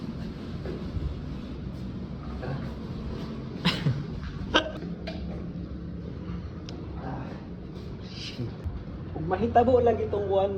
Kung mahitabo lang itong buwan,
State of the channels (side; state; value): both; identical; correlation 1.00